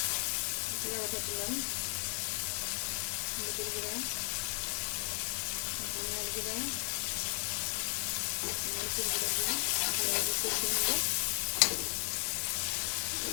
জিরা বাটা দিলাম, হলুদের গুঁড়া, ধনিয়ার গুঁড়া, মরিচের গুঁড়া দিয়ে ভালোভাবে কষিয়ে নেব।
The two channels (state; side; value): silent; right; digital silence